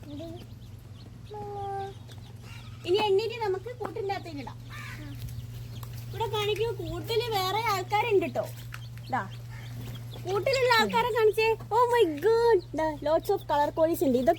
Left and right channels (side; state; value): both; identical; correlation 1.00